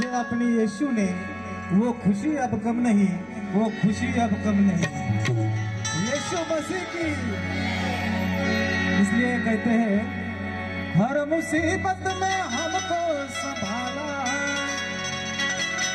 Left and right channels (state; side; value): noise; right; hum, 29 dB below the sound